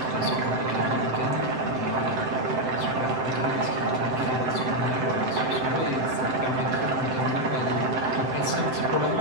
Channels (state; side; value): late; left; 7.8 ms